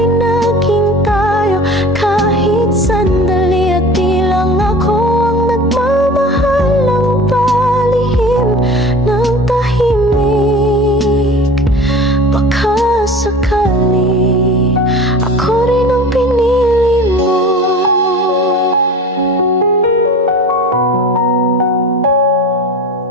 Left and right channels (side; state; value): both; normal; correlation 0.38